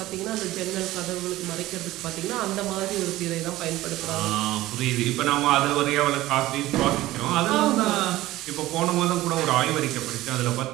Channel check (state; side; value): quieter; left; 16.6 dB